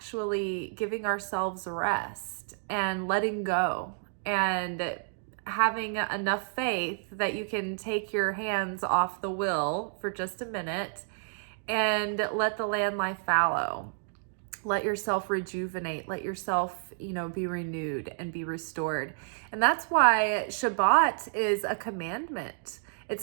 giving ourselves rest and letting go and having enough faith that you can take your hands off the wheel for just a minute and let the land lie fallow. Let yourself rejuvenate, let yourself, be renewed and be restored. And that's why Shabbat is a commandment.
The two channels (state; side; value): silent; left; digital silence